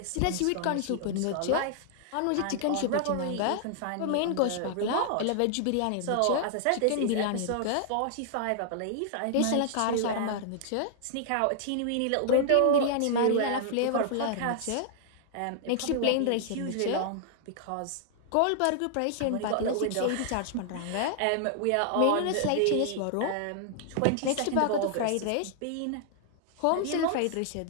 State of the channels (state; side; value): different; both; correlation -0.01